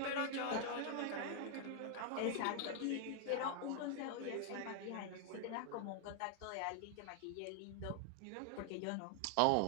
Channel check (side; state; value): both; different; correlation 0.00